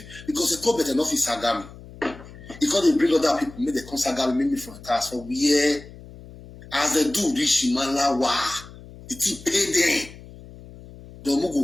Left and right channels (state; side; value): noise; left; hum, 18 dB below the sound